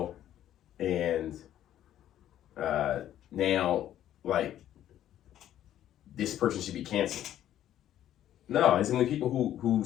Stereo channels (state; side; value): quieter; right; 11.8 dB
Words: and now, like, this person should be canceled. No, it's only people who